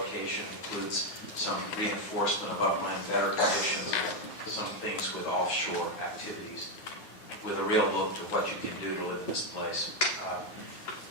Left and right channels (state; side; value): late; right; 9.5 ms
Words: includes some reinforcement of upland better conditions, some things with offshore activities, with a real look to what you can do to live in this place.